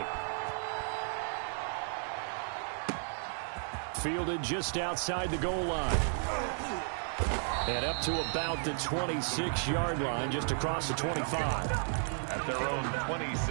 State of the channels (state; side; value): silent; left; 55 dB below the other